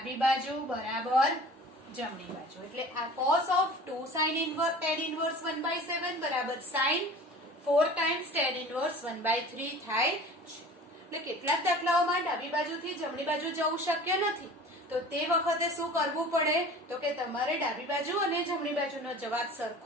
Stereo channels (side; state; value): both; normal; correlation 0.42